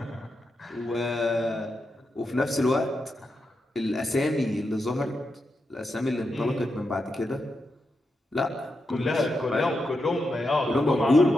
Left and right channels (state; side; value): normal; both; correlation 0.86